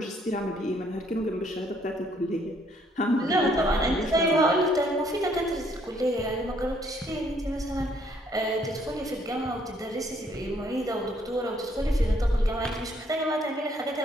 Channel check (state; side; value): normal; both; correlation 0.67